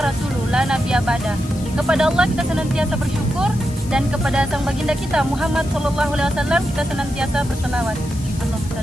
la nabiyya ba'da. Kepada Allah kita senantiasa bersyukur dan kepada sang baginda kita Muhammad sallallahu alaihi wasallam kita senantiasa berselawat. Allahumma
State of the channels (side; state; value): left; noise; hiss, 18 dB below the sound